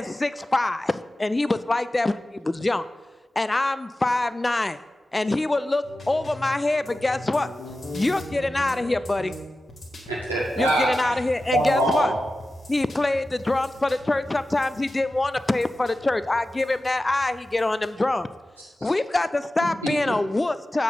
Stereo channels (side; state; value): both; normal; correlation 0.94